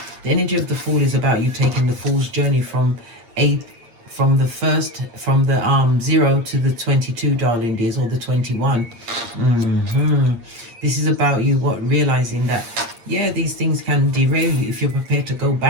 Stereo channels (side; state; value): left; late; 8.6 ms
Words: The energy of the Fool is about you taking the Fool's journey from the 0 to the 22, darling dears, or the 21. This is about you realizing that, yeah, these things can derail you if you're prepared to go